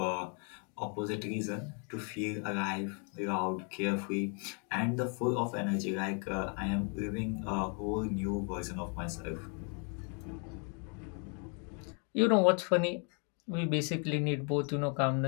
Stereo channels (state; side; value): quieter; right; 38.2 dB